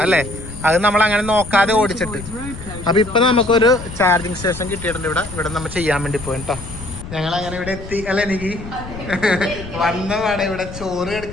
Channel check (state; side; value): noise; left; rumble, 12 dB below the sound